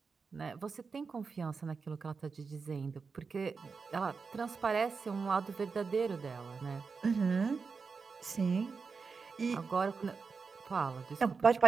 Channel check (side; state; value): left; quieter; 5.0 dB